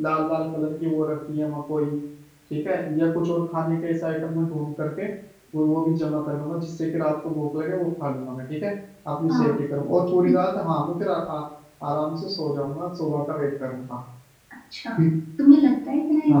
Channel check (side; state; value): both; identical; correlation 1.00